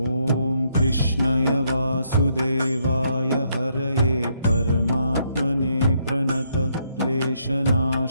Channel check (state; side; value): inverted; both; correlation -0.74